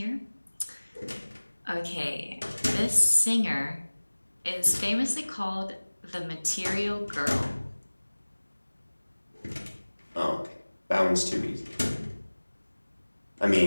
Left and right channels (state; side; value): inverted; both; correlation -1.00